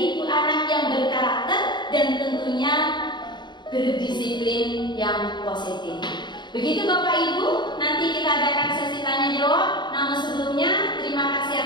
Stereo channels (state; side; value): late; right; 0.22 ms